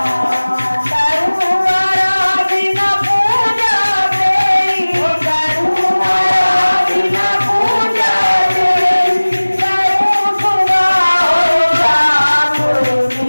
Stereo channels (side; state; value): both; inverted; correlation -1.00